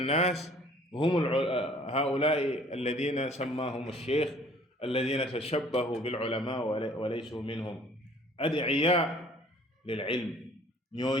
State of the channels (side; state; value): both; normal; correlation 0.55